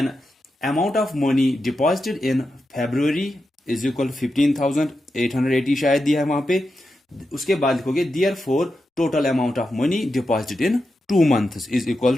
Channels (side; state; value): both; normal; correlation 0.89